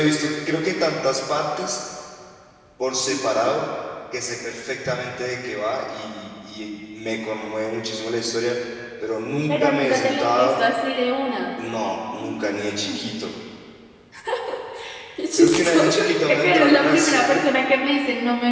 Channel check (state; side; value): identical; both; correlation 1.00